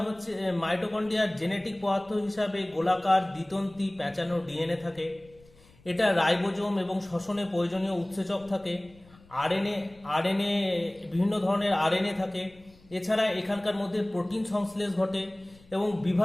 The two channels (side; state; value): left; noise; rumble, 27 dB below the sound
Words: মাইটোকন্ড্রিয়ার জেনেটিক পদার্থ হিসাবে গোলাকার দ্বিতন্তি প্যাঁচানো ডিএনএ থাকে। এটা রাইবোজোম এবং শ্বসনে প্রয়োজনীয় উৎসেচক থাকে। আরএনএ বিভিন্ন ধরনের আরএনএ থাকে। এছাড়া এখানকার মধ্যে প্রোটিন সংশ্লেষ ঘটে এবং